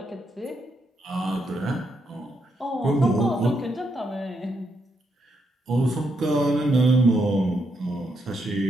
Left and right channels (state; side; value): normal; both; correlation 0.79